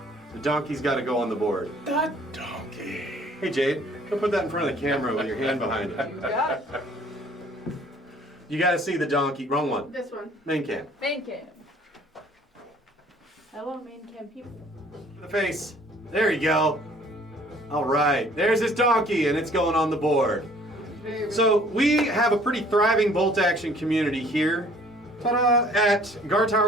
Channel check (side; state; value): both; normal; correlation 0.56